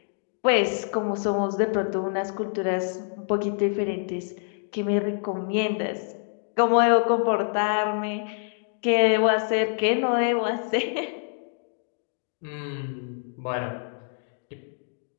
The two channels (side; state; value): right; silent; digital silence